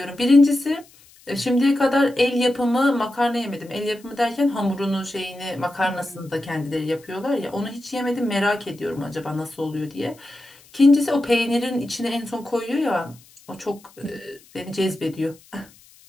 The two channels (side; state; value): left; noise; hiss, 26 dB below the sound